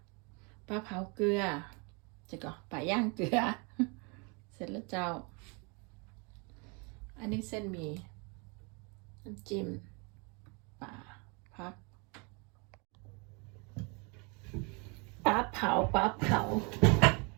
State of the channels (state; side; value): quieter; left; 32.0 dB